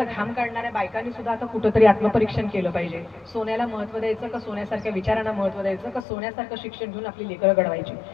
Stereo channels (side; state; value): right; drops out; at 6.1 s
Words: घाम काढणाऱ्या बायकांनी सुद्धा आता कुठंतरी आत्मपरीक्षण केलं पाहिजे. सोन्याला महत्व द्यायचं का सोन्यासारख्या विचारांना महत्व द्यायचं का सोन्यासारखं शिक्षण घेऊन आपली लेकरं घडवायची?